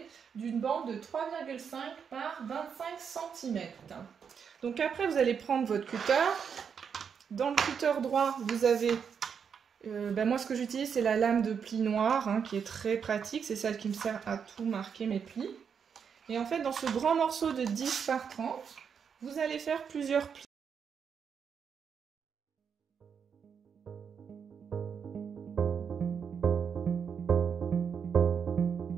d'une bande de 3,5 par 25 cm. Donc après, vous allez prendre votre cutter. Dans le cutter droit, vous avez... moi, ce que j'utilise, c'est la lame de pli noire, qui est très pratique. C'est celle qui me sert à tout marquer mes plis. Et en fait, dans ce grand morceau de 10 par 30, vous allez faire plusieurs plis.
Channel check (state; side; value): quieter; left; 6.9 dB